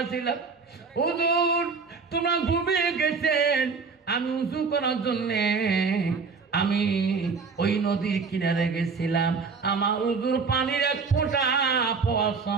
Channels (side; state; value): left; quieter; 5.0 dB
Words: ছিলাম হুজুর তোমরা ঘুমিয়ে গেছেন, আমি উঁচু করার জন্যে আমি ওই নদীর কিনারে গেছিলাম। আমার হুজুর পানির এক ফোঁটা পাওয়ার